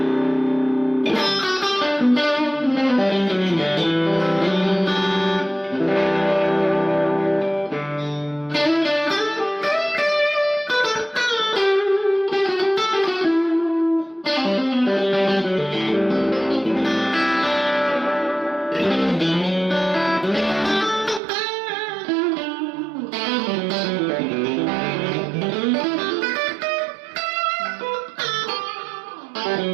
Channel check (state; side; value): drops out; left; at 21.2 s